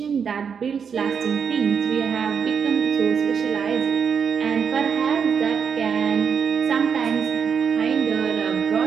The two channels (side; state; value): left; quieter; 6.7 dB